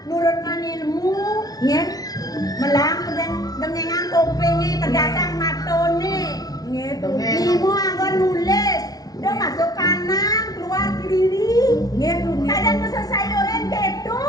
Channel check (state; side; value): late; right; 0.18 ms